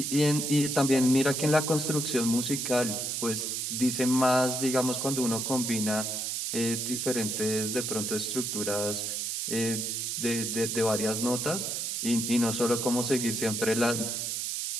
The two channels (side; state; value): right; noise; hiss, 2 dB below the sound